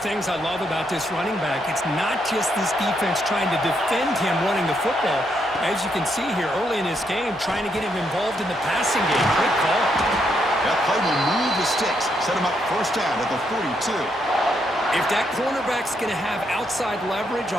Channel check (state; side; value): normal; both; correlation 0.77